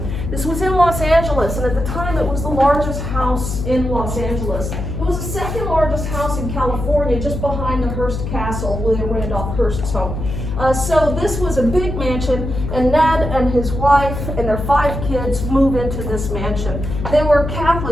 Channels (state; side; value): noise; left; hum, 5 dB below the sound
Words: This was in Los Angeles, and at the time it was the largest house in Los Angeles. It was the second largest house in California, just behind the Hearst Castle, William Randolph Hearst's home. So this was a big mansion, and Ned and his wife and their 5 kids move into this mansion. They were